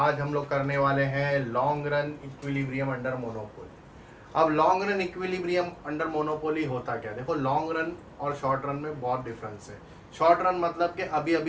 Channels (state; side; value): identical; both; correlation 1.00